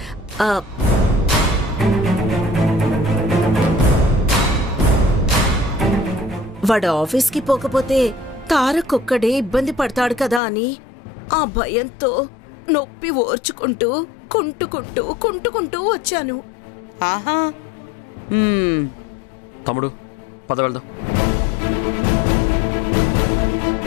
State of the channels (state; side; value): drops out; right; at 10.4 s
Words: వాడు ఆఫీస్కి పోకపోతే తారకొక్కడే ఇబ్బంది పడతాడు కదా అని ఆ భయంతో నొప్పి ఓర్చుకుంటూ కుంటుకుంటూ వచ్చాను. ఆహా. తమ్ముడు, పద వెళ్దాం.